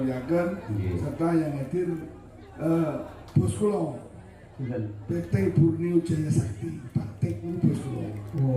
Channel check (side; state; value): both; identical; correlation 1.00